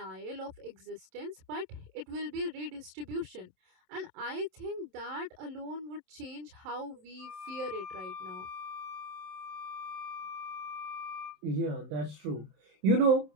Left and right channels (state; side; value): late; left; 26 ms